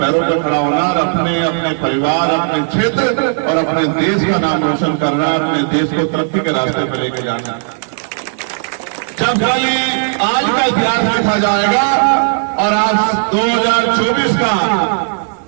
पैरों पर खड़ा होना और अपने परिवार, अपने क्षेत्र और अपने देश का नाम रोशन करना, अपने देश को तरक्की के रास्ते पर लेके जाना। जब खाली आज का इतिहास लिखा जाएगा और आप 2024 का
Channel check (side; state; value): left; silent; digital silence